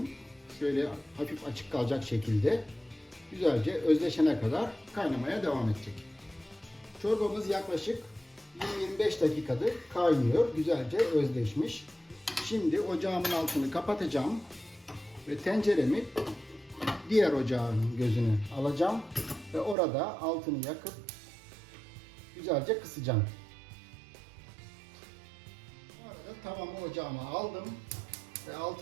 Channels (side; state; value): left; drops out; at 19.8 s